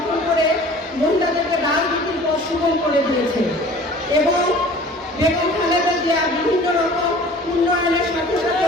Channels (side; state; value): both; normal; correlation 0.46